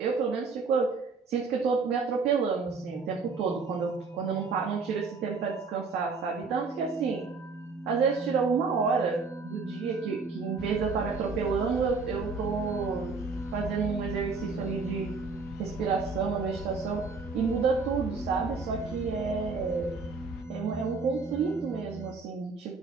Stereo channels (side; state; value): left; quieter; 4.4 dB